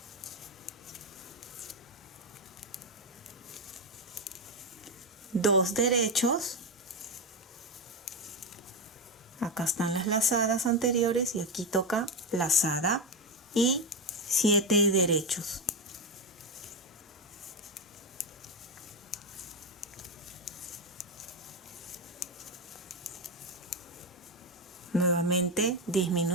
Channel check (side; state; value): both; normal; correlation 0.11